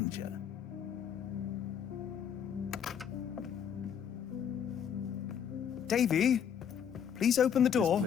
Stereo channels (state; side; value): quieter; right; 8.2 dB